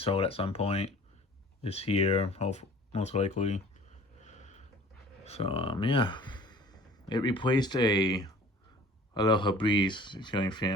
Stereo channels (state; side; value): normal; both; correlation 0.48